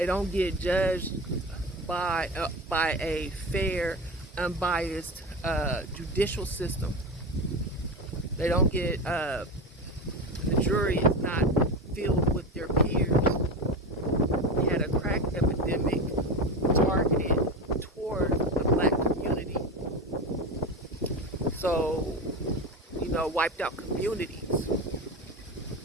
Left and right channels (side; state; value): both; normal; correlation 0.23